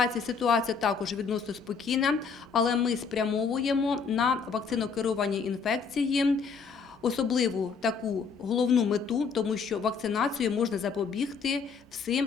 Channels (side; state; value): right; quieter; 5.5 dB